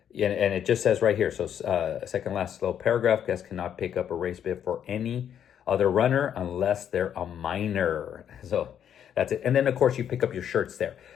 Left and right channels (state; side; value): quieter; right; 9.2 dB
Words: it just says right here. So second last little paragraph, guests cannot pick up a race bib for any other runner unless they're a minor. So that's it. And then, of course, you pick up your shirts there.